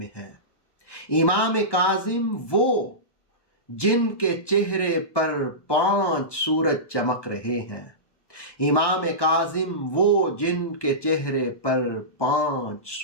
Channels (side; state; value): right; late; 1.1 ms